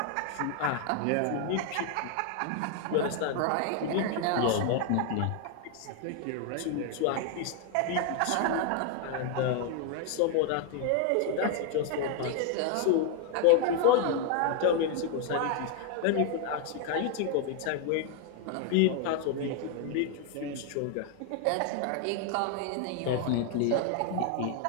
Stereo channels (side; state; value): both; different; correlation 0.00